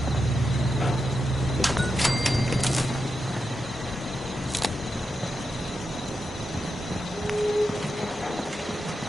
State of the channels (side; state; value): both; normal; correlation 0.88